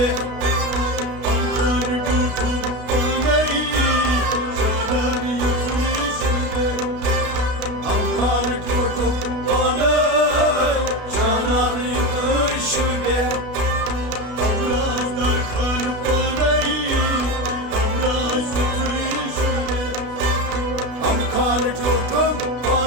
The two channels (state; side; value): late; left; 32 ms